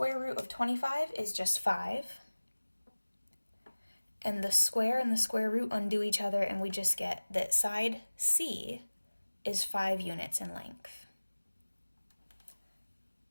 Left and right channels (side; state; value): both; inverted; correlation -1.00